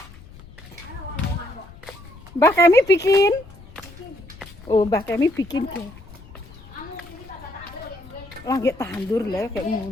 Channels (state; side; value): noise; left; rumble, 19 dB below the sound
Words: Mbah Kemi bikin. Oh, Mbah Kemi bikin deh. Lagi tandur lah kayak